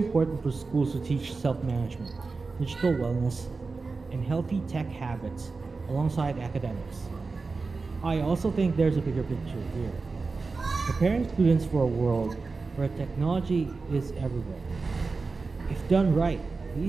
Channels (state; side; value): quieter; left; 4.1 dB